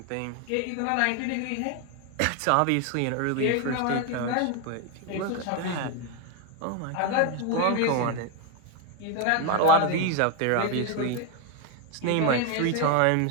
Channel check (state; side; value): different; both; correlation 0.01